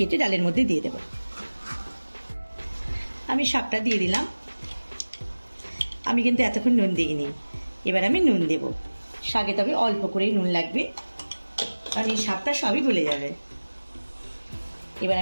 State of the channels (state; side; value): inverted; both; correlation -1.00